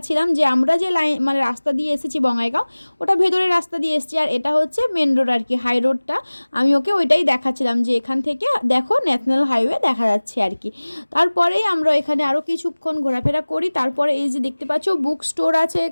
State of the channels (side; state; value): both; inverted; correlation -1.00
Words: যে আমরা যে লাইন মানে রাস্তা দিয়ে এসেছি বঙ্গাইগাঁও, ওটা ভেতরের রাস্তা দিয়ে এসেছি, আর এটা হচ্ছে মেন রোড আর কি, হাই রোডটা। আমি ওকে ওইটাই দেখাচ্ছিলাম যে এখান থেকে দেখো ন্যাশনাল হাইওয়ে দেখা যাচ্ছে আর কি। তারপরেই আমরা এখানে আরও কিছুক্ষণ ঘোরাফেরা করি। তারপরে এই যে দেখতে পাচ্ছ বুক স্টোর আছে